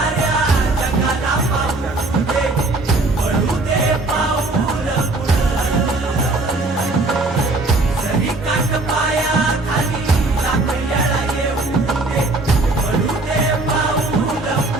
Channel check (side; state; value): left; quieter; 3.0 dB